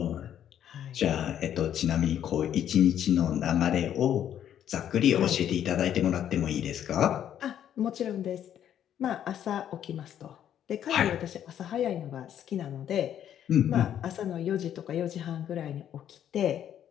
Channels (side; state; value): right; quieter; 10.2 dB